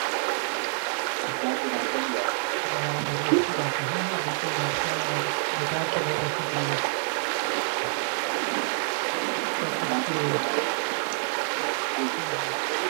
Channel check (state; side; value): silent; left; 60 dB below the other